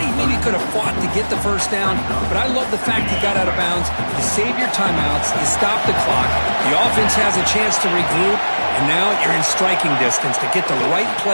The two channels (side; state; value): both; inverted; correlation -1.00